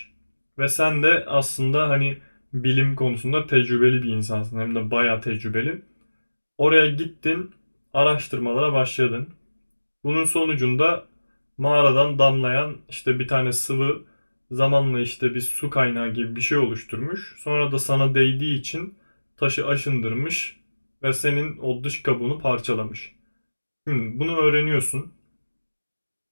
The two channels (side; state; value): both; inverted; correlation -1.00